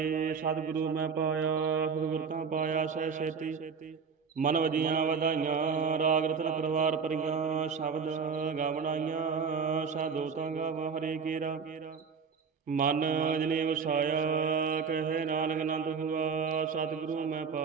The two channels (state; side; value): quieter; left; 5.8 dB